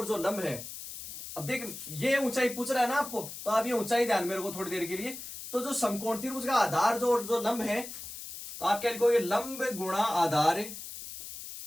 जो लंब है। अब देख, ये ऊंचाई पूछ रहा है ना आपको, तो आप ये ऊंचाई ध्यान में रखो थोड़ी देर के लिए। तो जो समकोण त्रिभुज का आधार जो लंब है, तो आप क्या लिखोगे? लंब गुणा आधार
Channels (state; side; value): noise; left; hiss, 10 dB below the sound